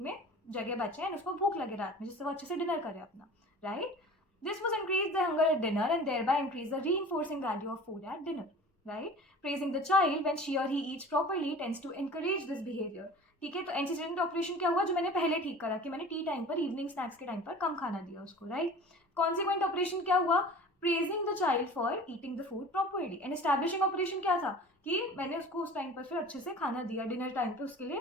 में जगह बचे एंड उसको भूख लगे रात में, जिससे वो अच्छे से डिनर करे अपना, right? This was increase the hunger at dinner and thereby increase the reinforcing value of food at dinner, right? Praising the child when she और he eats properly tends to encourage this behaviour. ठीक है, तो antecedent operation क्या हुआ, जो मैंने पहले ठीक करा कि मैंने टी टाइम पर, इवनिंग स्नैक्स के टाइम पर कम खाना दिया उसको, राइट? कॉन्सिक्वेंट ऑपरेशन क्या हुआ, praising the child for eating the food properly. And establishing operation क्या था कि मैंने उसको उस टाइम पर फिर अच्छे से खाना दिया, डिनर टाइम पे उसके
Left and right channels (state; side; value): normal; both; correlation 0.41